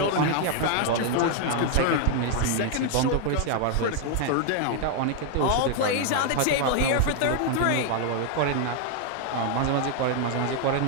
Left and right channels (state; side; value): different; both; correlation 0.00